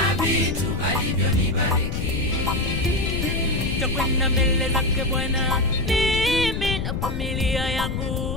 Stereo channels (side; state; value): left; noise; rumble, 2 dB below the sound